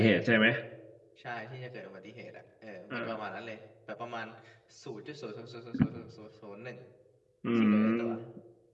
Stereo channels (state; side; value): identical; both; correlation 1.00